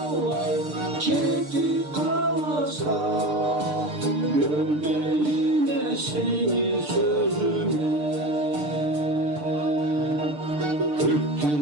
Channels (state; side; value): late; left; 6.7 ms